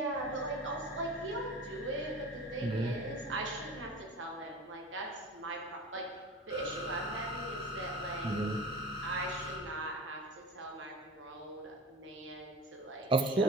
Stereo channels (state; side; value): normal; both; correlation 0.33